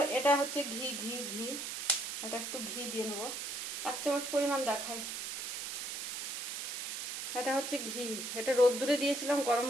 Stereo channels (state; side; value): noise; right; hiss, 4 dB below the sound